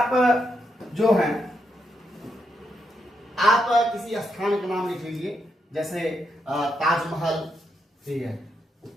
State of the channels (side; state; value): both; normal; correlation 0.81